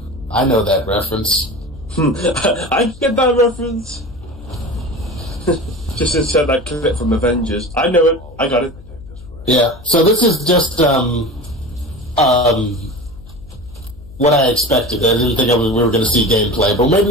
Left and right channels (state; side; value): noise; left; hum, 19 dB below the sound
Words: I know that reference. I get that reference. Just insert that clip from Avengers. I know it. I got it. Yeah. So this is just what I expected. I didn't think we were going to see gameplay, but maybe